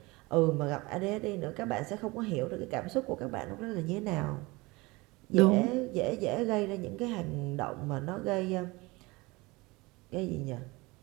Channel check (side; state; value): left; quieter; 23.4 dB